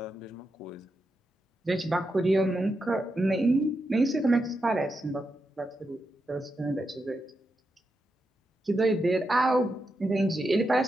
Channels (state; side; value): normal; both; correlation 0.86